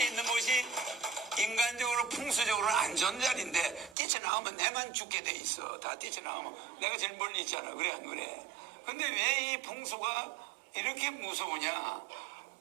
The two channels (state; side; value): drops out; left; at 4.0 s